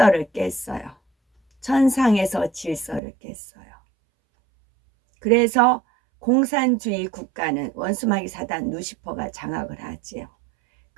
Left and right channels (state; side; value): drops out; left; at 3.0 s